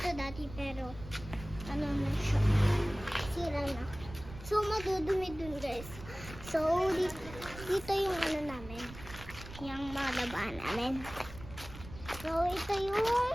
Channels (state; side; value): noise; right; rumble, 14 dB below the sound